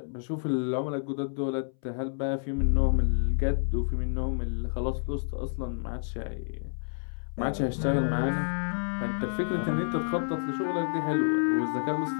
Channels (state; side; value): silent; right; 58 dB below the other